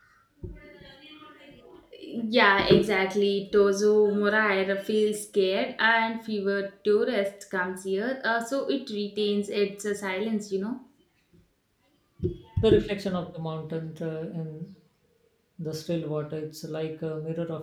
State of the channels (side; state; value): both; identical; correlation 1.00